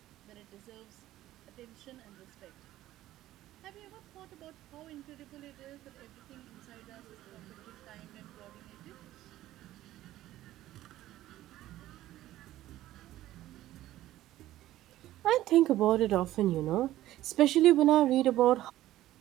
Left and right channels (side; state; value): left; quieter; 14.6 dB